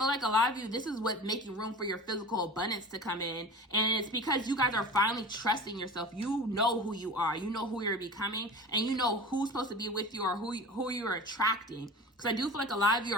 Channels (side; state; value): both; normal; correlation 0.35